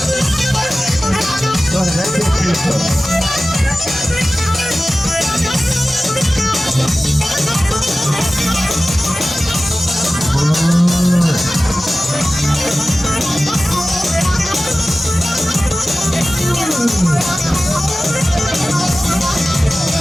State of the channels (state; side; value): normal; both; correlation 0.96